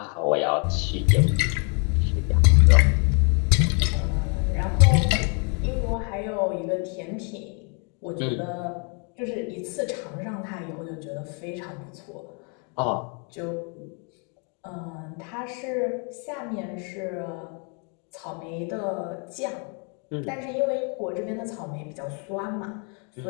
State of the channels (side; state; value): right; quieter; 37.7 dB